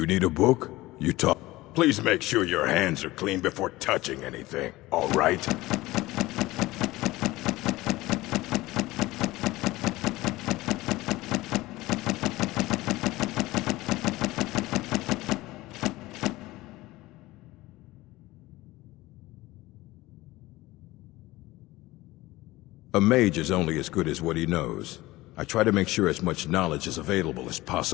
need a book? You talk. Please make sure your hands are clean before touching anything, all right? A mage is only as good as what he knows. I try to make sure as much knowledge is available as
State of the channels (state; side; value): quieter; right; 18.8 dB